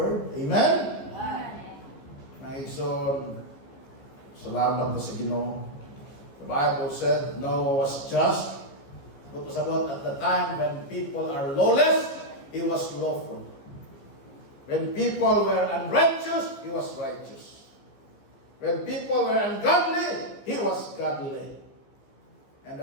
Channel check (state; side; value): late; right; 15 ms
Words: Amen? Naison, salamat na sa Ginoo. The Bible said Noah was just. But was about at the time when people are lawless, he was lawful. When people were unrighteous, he was righteous. When people were ungodly, he was godly. And